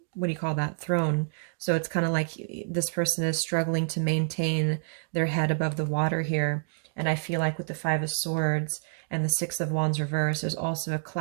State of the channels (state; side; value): silent; left; 59 dB below the other